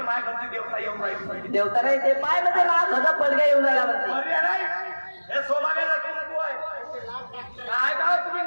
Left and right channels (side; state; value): both; inverted; correlation -1.00